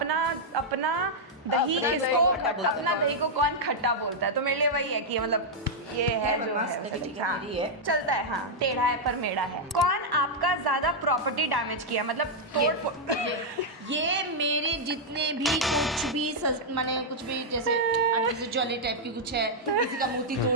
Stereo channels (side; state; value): both; normal; correlation -0.04